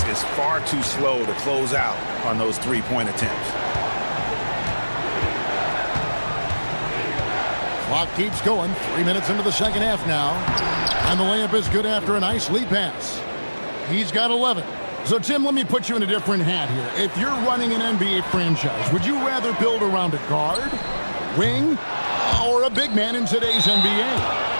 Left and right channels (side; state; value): both; inverted; correlation -1.00